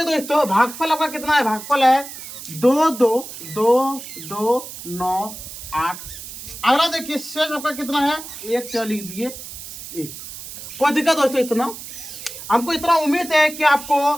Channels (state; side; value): noise; right; hiss, 12 dB below the sound